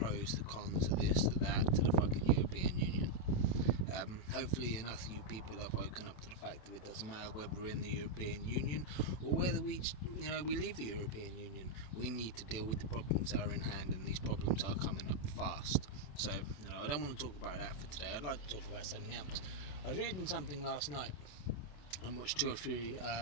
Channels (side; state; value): right; late; 27 ms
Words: the cons, of this, the that, to the fucking European Union. Hopefully enough of you people have woken up to the fact that it doesn't matter whether we're in the European Union or whether we leave the European Union. We need to deal with the problems that are in hand, and these problems are coming up fast. So, I don't want to talk about that for today. I'd like to talk about something else. I was reading something last night and watched two or three